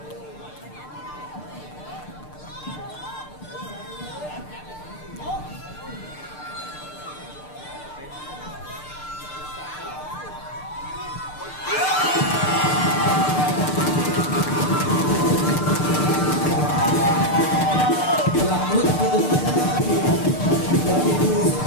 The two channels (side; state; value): right; late; 6.7 ms